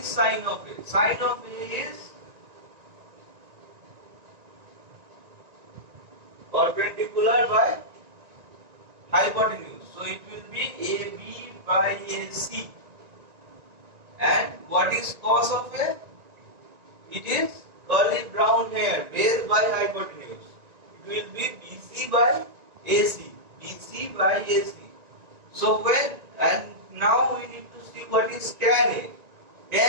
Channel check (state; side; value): late; left; 1.9 ms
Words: sine of A? Sine of A is perpendicular by hypotenuse. So it will be AB by AC. And what is cos of A? It is curly brown hair, base by hypotenuse. It will be BC by AC. BC by AC. So when, and now we need to see what is tan A.